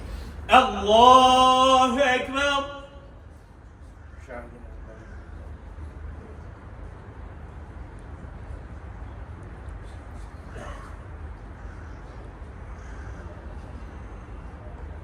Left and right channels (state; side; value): identical; both; correlation 1.00